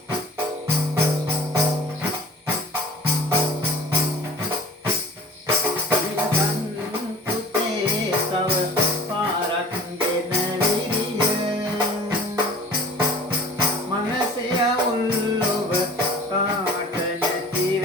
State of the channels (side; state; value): both; normal; correlation 0.46